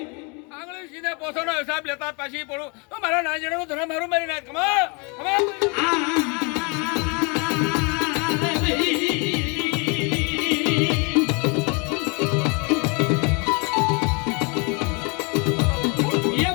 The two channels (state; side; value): quieter; right; 32.2 dB